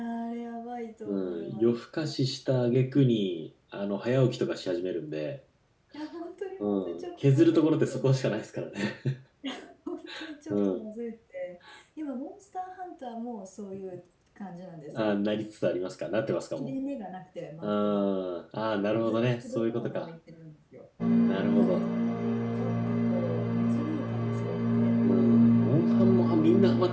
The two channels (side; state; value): both; identical; correlation 1.00